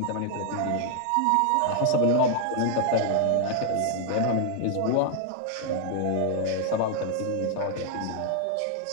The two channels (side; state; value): both; different; correlation 0.00